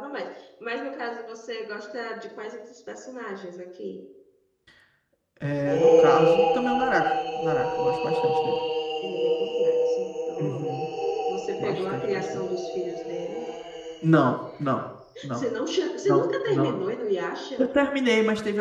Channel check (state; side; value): identical; both; correlation 1.00